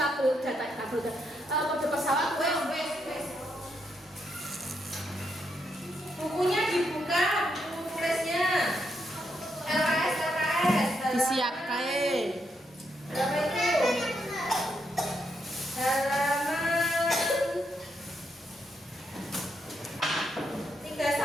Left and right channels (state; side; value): normal; both; correlation 0.79